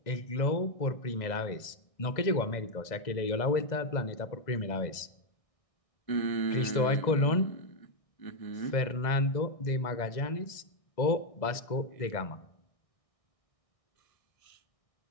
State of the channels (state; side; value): late; right; 2.0 ms